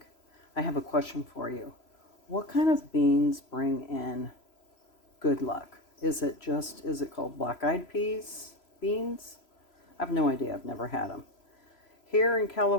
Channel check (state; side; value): late; right; 3.0 ms